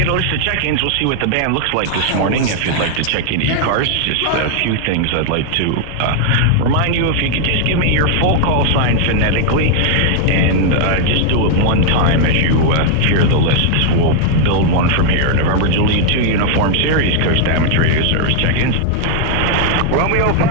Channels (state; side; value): different; both; correlation 0.00